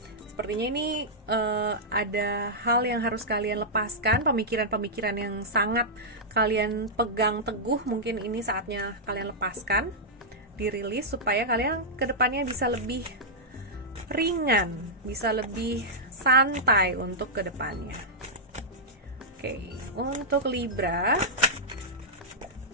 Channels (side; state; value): both; normal; correlation -0.09